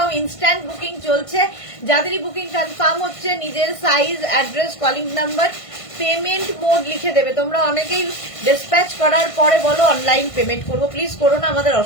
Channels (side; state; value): right; late; 1.5 ms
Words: ইনস্ট্যান্ট বুকিং চলছে। যাদেরই বুকিং কনফার্ম হচ্ছে, নিজের size, address, calling number, payment mode লিখে দেবে। তোমরা অনেকেই ডিসপ্যাচ করার পরে বলো অনলাইন পেমেন্ট করবো, প্লিজ করো না, আমাদের